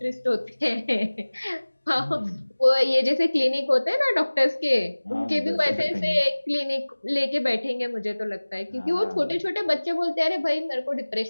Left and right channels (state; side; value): inverted; both; correlation -1.00